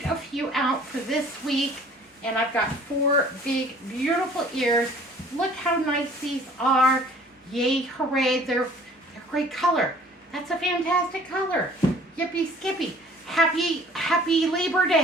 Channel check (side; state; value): both; normal; correlation 0.53